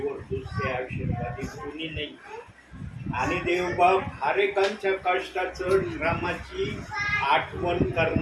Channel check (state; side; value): identical; both; correlation 1.00